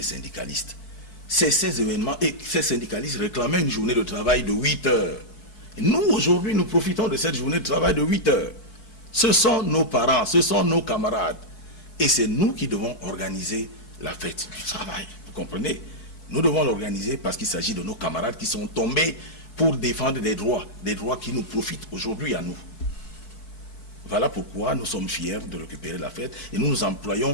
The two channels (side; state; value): right; late; 4.5 ms